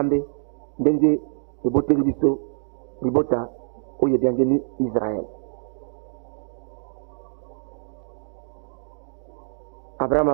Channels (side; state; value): left; silent; digital silence